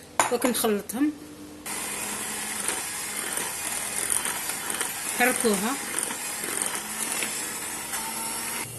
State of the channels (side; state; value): both; identical; correlation 1.00